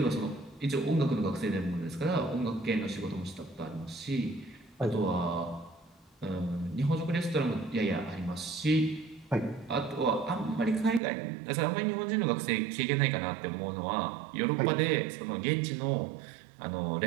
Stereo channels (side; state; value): left; drops out; at 11.0 s